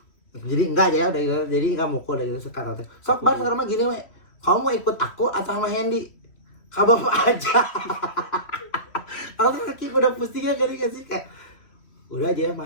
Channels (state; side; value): late; right; 3.1 ms